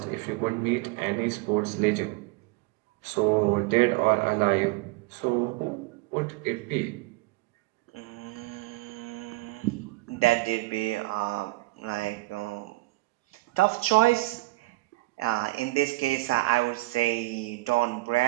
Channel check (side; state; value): left; quieter; 21.6 dB